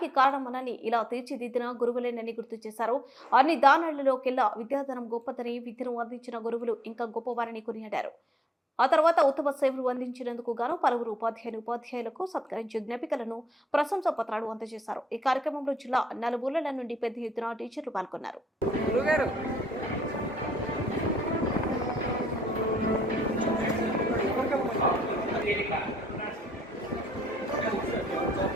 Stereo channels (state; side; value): normal; both; correlation 0.75